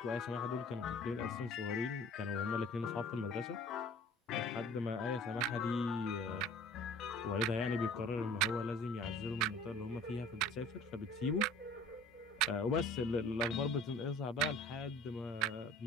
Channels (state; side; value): normal; both; correlation 0.47